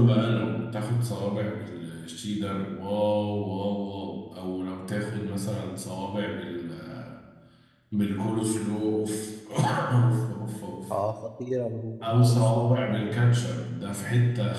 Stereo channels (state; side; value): identical; both; correlation 1.00